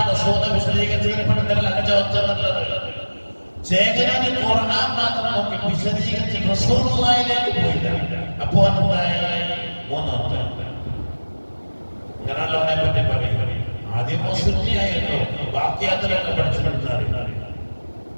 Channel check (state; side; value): inverted; both; correlation -1.00